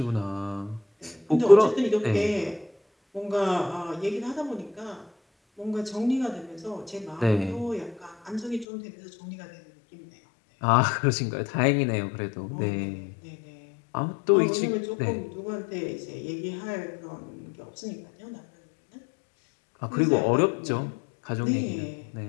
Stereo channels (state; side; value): drops out; right; at 8.7 s